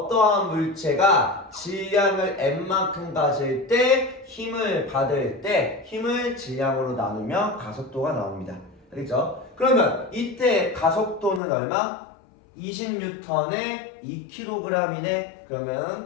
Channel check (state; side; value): drops out; right; at 11.4 s